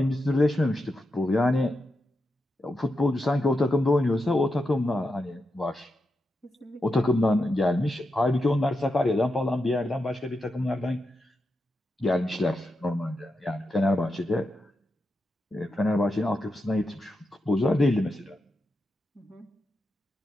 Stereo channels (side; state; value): both; normal; correlation 0.87